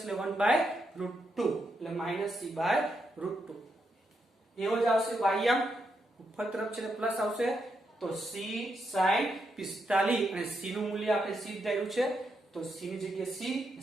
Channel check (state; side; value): normal; both; correlation 0.81